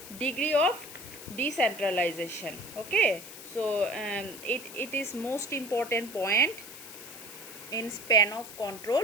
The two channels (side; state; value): left; noise; hiss, 14 dB below the sound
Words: degree of decentralization. Okay, so it is most important point in span of control,